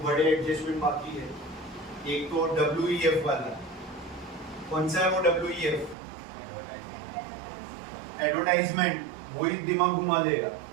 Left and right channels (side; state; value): left; drops out; at 6.0 s